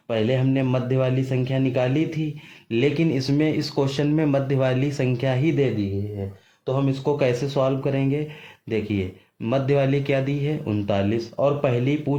पहले हमने मध्य वाली संख्या निकाली थी, लेकिन इसमें इस क्वेश्चन में मध्य वाली संख्या ही दे दी है। तो हम इसको कैसे सॉल्व करेंगे, देखिए मध्य वाली क्या दी है, 39, और पहली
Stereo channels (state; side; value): identical; both; correlation 1.00